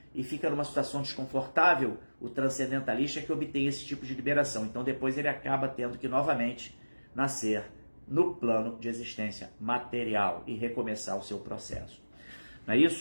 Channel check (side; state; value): both; inverted; correlation -1.00